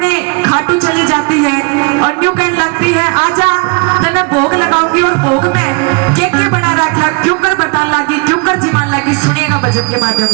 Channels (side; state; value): left; quieter; 30.8 dB